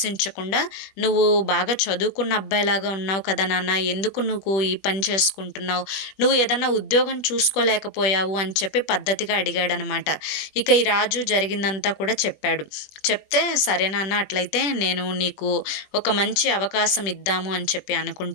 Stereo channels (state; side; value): late; right; 21 ms